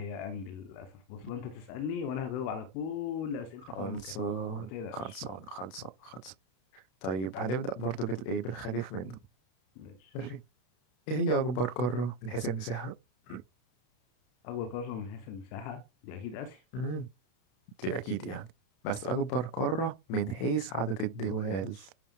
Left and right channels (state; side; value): late; right; 32 ms